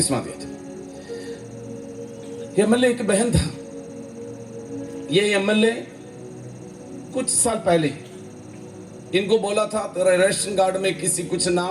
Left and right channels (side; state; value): both; identical; correlation 1.00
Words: दिया था। एमएलए एक बहन था। ये एमएलए कुछ साल पहले इनको बोला था, तेरा रेशन कार्ड में किसी कुछ